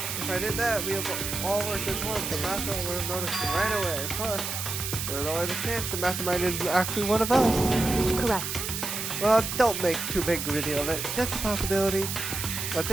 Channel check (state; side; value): noise; right; hiss, 4 dB below the sound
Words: If I did that, we have all worked as one. The mastermind would have noticed right away. Plus, there's always a chance the mastermind is actually one of us. Correct. Well, don't make too big a deal of it. Just a possibility. But